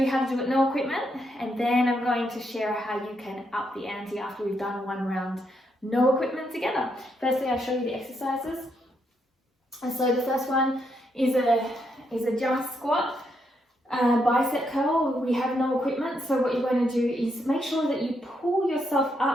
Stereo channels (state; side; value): normal; both; correlation 0.78